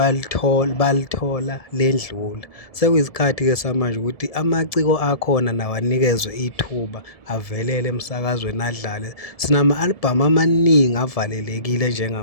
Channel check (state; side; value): late; right; 1.7 ms